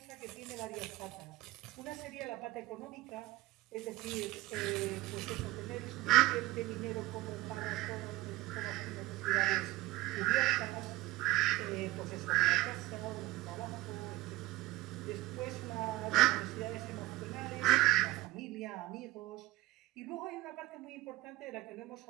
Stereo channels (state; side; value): quieter; left; 18.7 dB